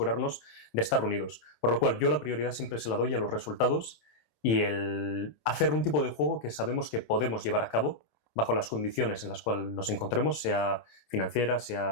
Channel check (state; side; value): late; right; 27 ms